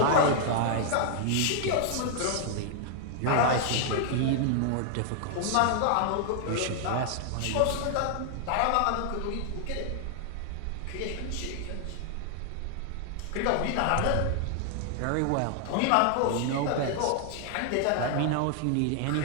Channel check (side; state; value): both; different; correlation 0.00